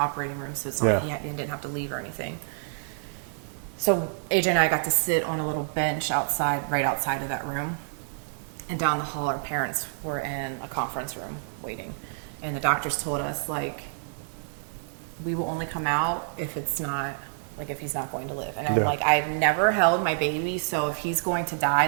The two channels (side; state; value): left; silent; digital silence